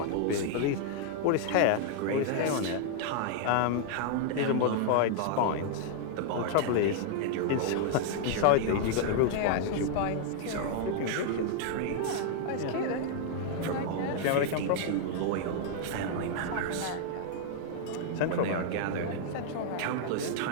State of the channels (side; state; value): both; different; correlation -0.01